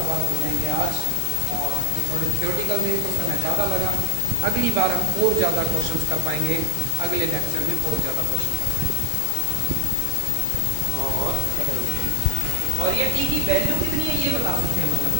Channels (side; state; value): both; different; correlation 0.00